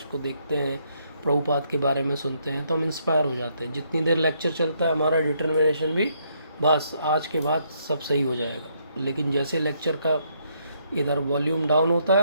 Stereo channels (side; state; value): both; inverted; correlation -0.73